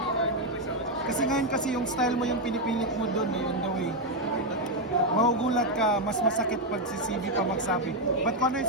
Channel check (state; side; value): normal; both; correlation 0.03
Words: Kasi ngayon yung style mo yung pinipilit mo doon on the way. Magugulat ka, mas masakit pag si CB pa magsabi. But kung ano